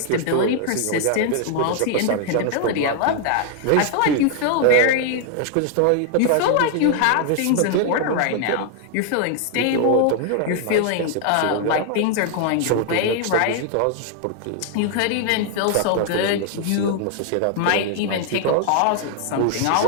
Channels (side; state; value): both; different; correlation 0.00